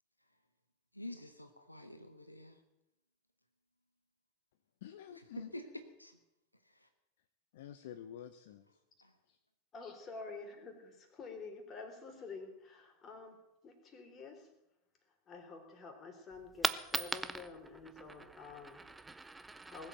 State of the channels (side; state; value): both; normal; correlation 0.58